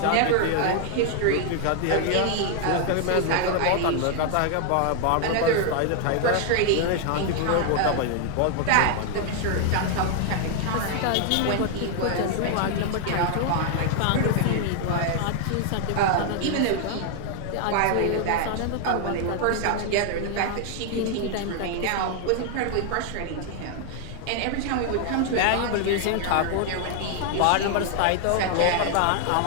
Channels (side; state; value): both; different; correlation 0.00